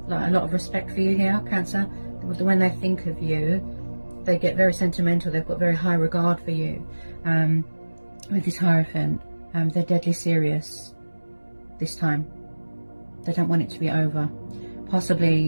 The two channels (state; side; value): inverted; both; correlation -1.00